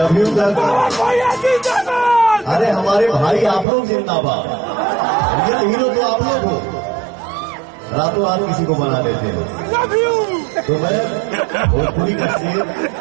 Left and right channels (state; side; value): drops out; left; at 3.7 s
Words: you भैया जिंदाबाद। अरे हमारे भाई आप लोग जिंदाबाद। रियल हीरो तो आप लोग हो, रातों रात किसी को बना देते हो। Love you. तो मैं भोजपुरी का शेर